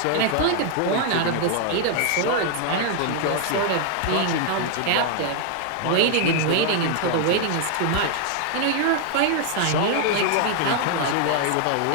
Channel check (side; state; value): both; different; correlation 0.00